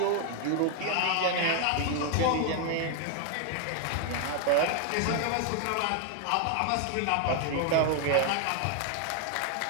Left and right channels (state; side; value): different; both; correlation 0.00